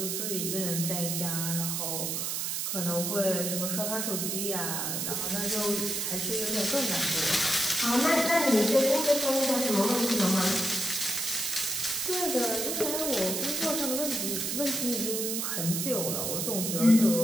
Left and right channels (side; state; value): right; noise; hiss, 1 dB below the sound